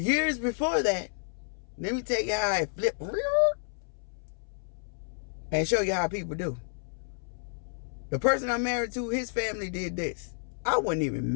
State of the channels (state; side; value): silent; right; 58 dB below the other